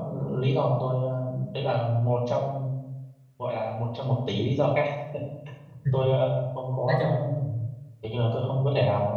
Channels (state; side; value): identical; both; correlation 1.00